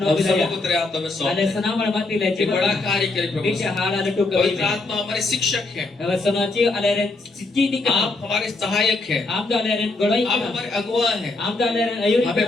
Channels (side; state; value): right; quieter; 3.3 dB